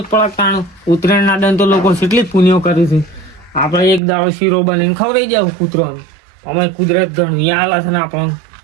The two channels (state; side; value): drops out; left; at 4.0 s